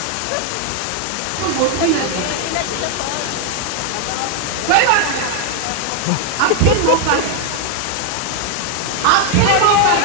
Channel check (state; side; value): different; both; correlation 0.01